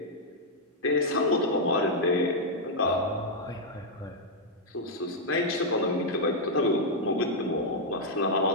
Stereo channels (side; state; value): both; normal; correlation -0.03